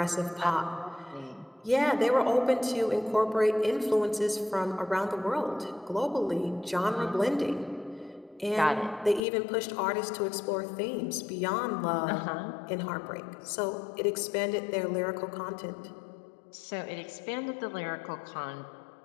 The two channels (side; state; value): right; drops out; at 9.2 s